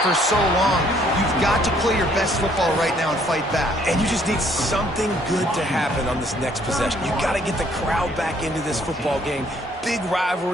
for so long. You've got to play your best football right now and fight back. And you just need something good to happen on this next possession. You got to get the crowd back into this football game. Big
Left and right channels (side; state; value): both; normal; correlation 0.64